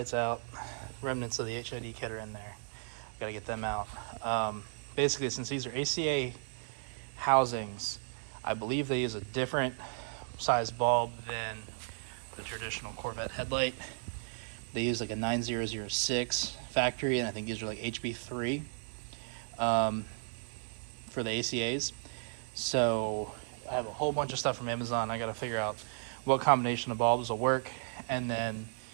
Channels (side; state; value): left; silent; 55 dB below the other